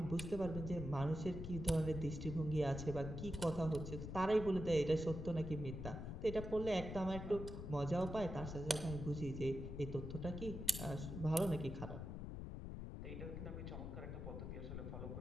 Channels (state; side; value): noise; left; rumble, 6 dB below the sound